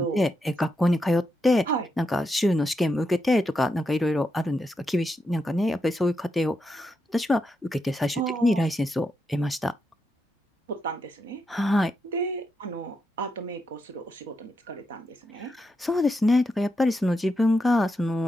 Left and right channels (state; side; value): normal; both; correlation 0.84